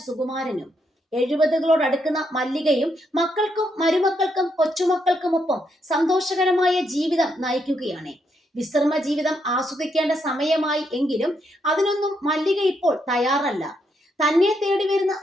സുകുമാരനും. 70-കളോടടുക്കുന്ന മല്ലികയും മക്കൾക്കും മരുമക്കൾക്കും കൊച്ചുമക്കൾക്കുമൊപ്പം സന്തോഷകരമായ ജീവിതം നയിക്കുകയാണ്. വിശ്രമ ജീവിതം ആസ്വദിക്കേണ്ട സമയമായി എങ്കിലും അതിനൊന്നും മല്ലിക ഇപ്പോൾ തയ്യാറല്ല. തന്നെ തേടി വരുന്ന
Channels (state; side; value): normal; both; correlation 0.78